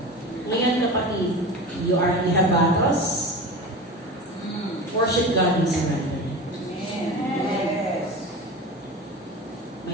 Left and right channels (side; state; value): both; normal; correlation 0.30